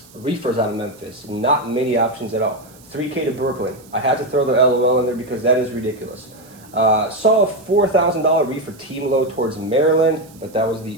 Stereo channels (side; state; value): right; noise; hiss, 25 dB below the sound